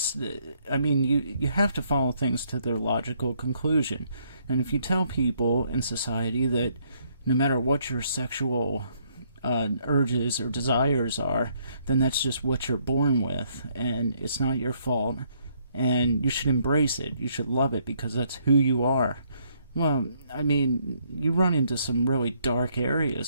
have to follow things to their logical conclusion. And if you tell people in society that no matter what your sexual urges or desires are, then that's just what you're born with, and it's not your fault, and you should embrace it, you should love it because that's who you are. Well, you run into some really dark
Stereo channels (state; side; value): inverted; both; correlation -0.70